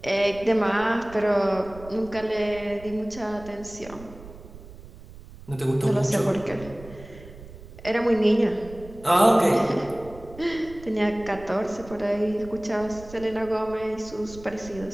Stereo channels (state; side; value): noise; right; rumble, 17 dB below the sound